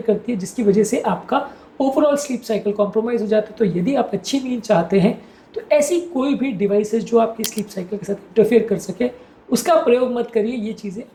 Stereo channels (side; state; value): both; identical; correlation 1.00